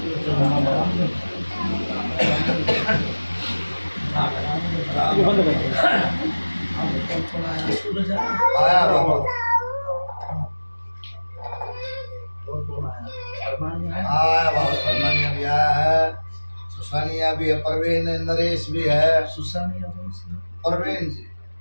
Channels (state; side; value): inverted; both; correlation -1.00